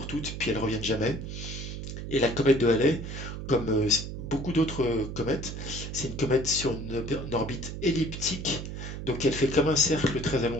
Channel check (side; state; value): right; noise; hum, 7 dB below the sound